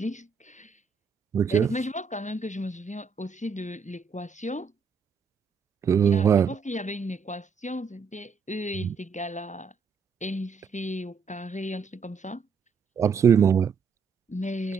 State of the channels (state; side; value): quieter; left; 5.6 dB